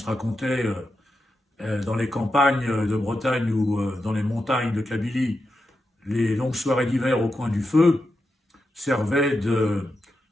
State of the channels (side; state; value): both; normal; correlation 0.88